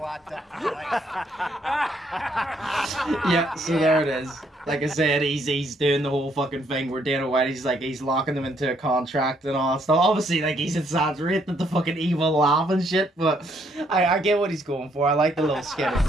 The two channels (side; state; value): both; normal; correlation 0.70